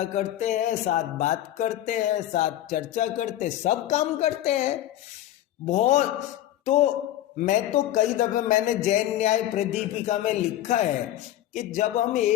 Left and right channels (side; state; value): right; quieter; 13.1 dB